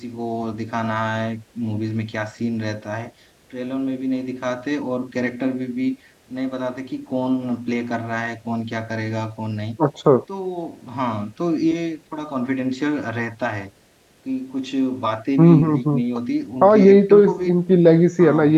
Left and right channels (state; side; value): identical; both; correlation 1.00